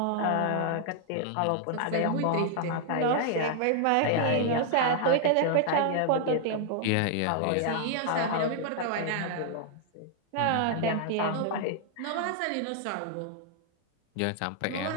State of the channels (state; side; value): different; both; correlation 0.00